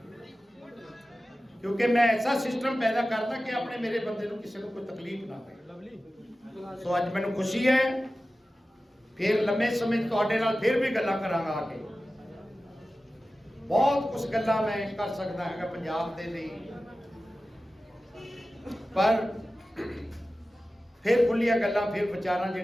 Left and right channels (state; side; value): normal; both; correlation 0.95